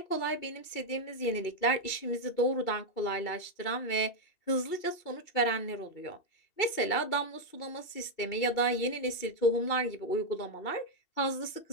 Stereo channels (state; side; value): late; right; 2.7 ms